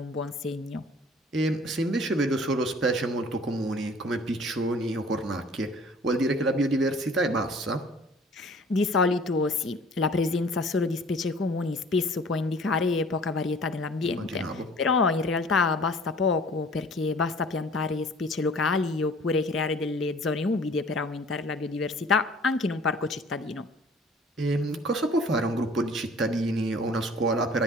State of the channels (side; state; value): both; normal; correlation 0.50